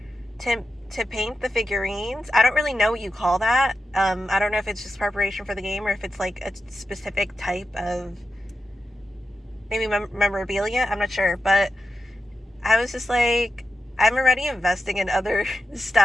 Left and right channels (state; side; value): normal; both; correlation 0.90